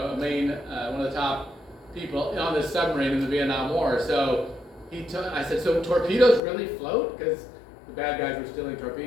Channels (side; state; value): right; drops out; at 6.4 s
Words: main, one of the top people on this submarine in the Vietnam War. So I said, so torpedoes really float? Because the bad guys were stealing